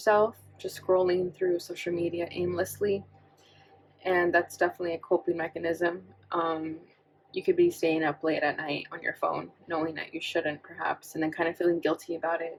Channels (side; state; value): both; identical; correlation 1.00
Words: just scrolling through social media aimlessly, and that's definitely a coping mechanism. You could be staying up late at night on your phone, knowing that you shouldn't perhaps, and then kind of feeling guilty about